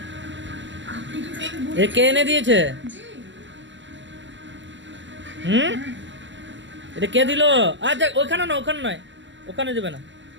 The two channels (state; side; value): late; left; 0.54 ms